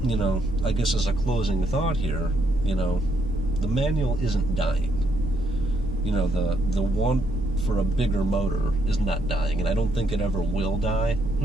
I guess as a closing thought here, the manual isn't dying. The want for a bigger motor is not dying, and I don't think it ever will die.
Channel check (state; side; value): normal; both; correlation 0.74